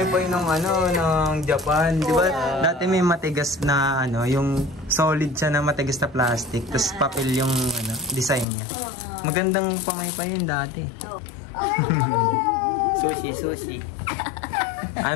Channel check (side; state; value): right; drops out; at 8.5 s